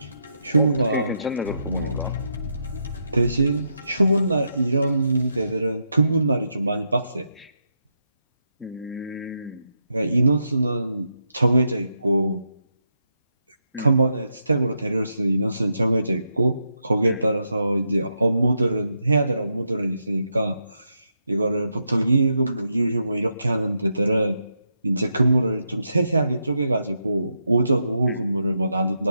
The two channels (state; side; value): inverted; both; correlation -0.83